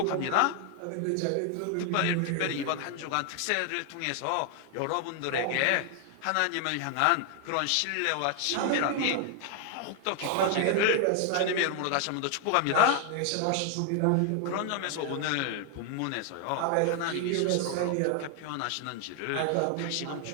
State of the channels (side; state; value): both; different; correlation 0.00